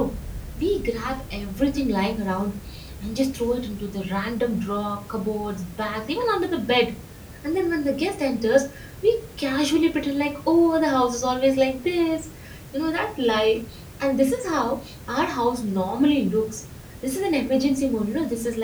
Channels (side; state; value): both; identical; correlation 1.00